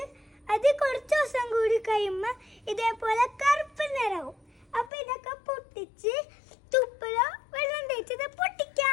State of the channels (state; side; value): drops out; right; at 4.9 s